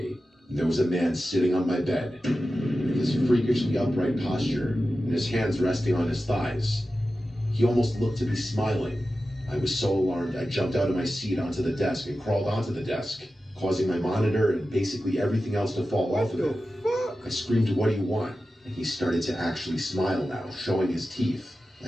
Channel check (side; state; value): both; normal; correlation 0.93